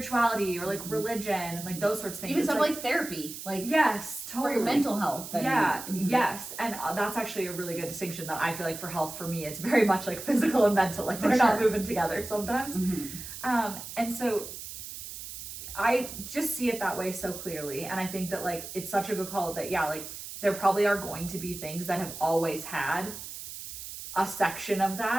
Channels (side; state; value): right; noise; hiss, 10 dB below the sound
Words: or like religion and like those sorts of things. even stuff like therapy, like yes, totally. for your mental health. And, Yes. And that's actually a really good distinction that I feel like for health, for me, it's very much like physical and mental, like they're not moving together sometimes. And so I just see it that way so clearly. And I think that like, it's such a good call that, like there probably are going to be things that have always had a section of